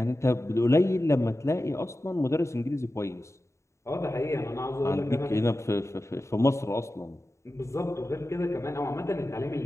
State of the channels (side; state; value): right; late; 0.14 ms